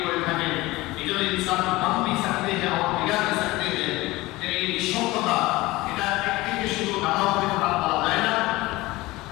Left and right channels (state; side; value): quieter; right; 19.9 dB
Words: করে থাকেন। এই জন্য ইনসান বন भी सकते हैं और बिगड़ भी सकते हैं। এই নিঃসঙ্গতা এটা একদিকে শুধু ভালো হবে তা বলা যায় না।